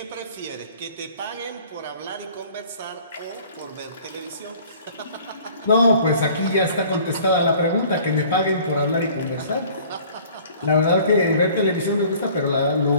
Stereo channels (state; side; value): inverted; both; correlation -0.51